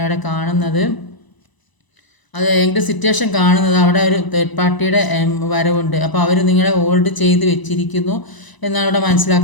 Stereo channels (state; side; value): late; right; 1.0 ms